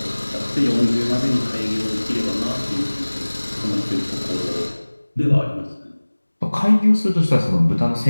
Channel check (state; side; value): inverted; both; correlation -1.00